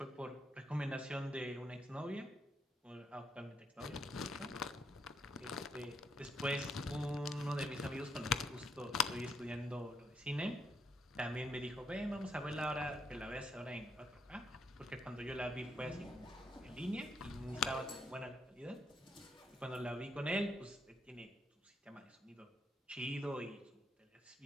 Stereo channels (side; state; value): both; normal; correlation 0.77